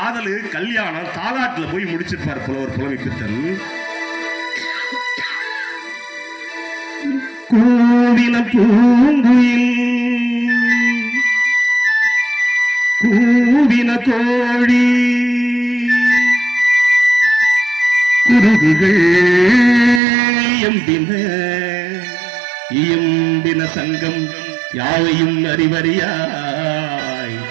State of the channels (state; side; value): drops out; left; at 20.0 s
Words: கல்யாணம் தாலாட்டுல போய் முடிச்சிருப்பார் புலவர் புலமை பித்தன். கூவின பூங்குயில் கூவின கோழி குருகுகள் எம்பின இயம்பின சங்கம் யாவையும் அறிவறியாய்